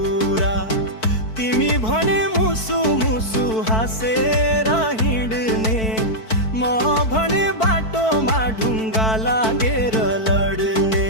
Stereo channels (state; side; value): late; right; 4.5 ms